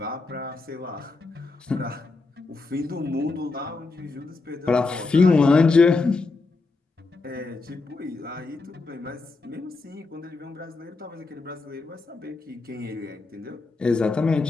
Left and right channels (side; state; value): right; quieter; 3.7 dB